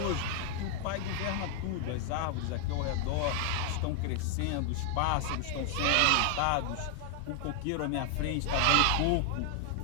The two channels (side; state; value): both; different; correlation 0.00